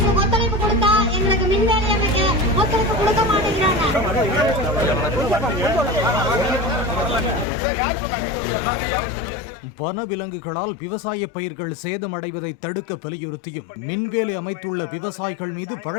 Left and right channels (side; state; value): right; drops out; at 7.5 s